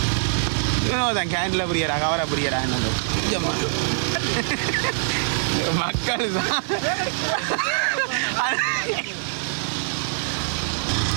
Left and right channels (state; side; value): silent; left; 63 dB below the other